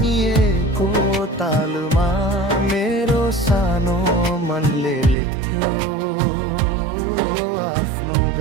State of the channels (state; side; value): drops out; left; at 5.2 s